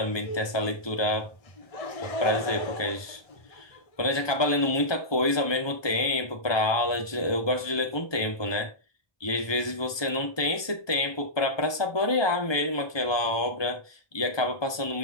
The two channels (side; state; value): right; late; 1.2 ms